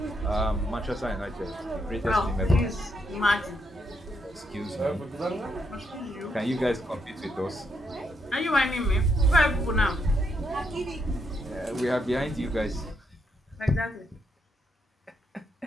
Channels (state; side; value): normal; both; correlation 0.78